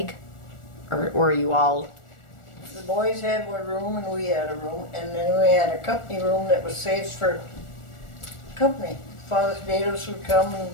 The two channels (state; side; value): late; right; 1.4 ms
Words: Or were you all, The boys had one room and we had a room, and then we had a company room that was saved for company. Father Dados would come